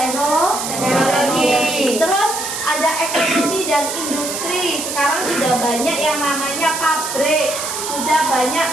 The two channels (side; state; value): right; noise; hiss, 5 dB below the sound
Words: Terus ada ekonomi dan industri. Sekarang sudah banyak yang namanya pabrik, sudah